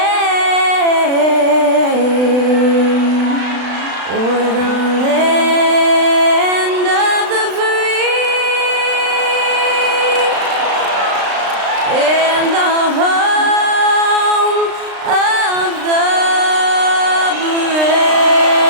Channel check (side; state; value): left; late; 36 ms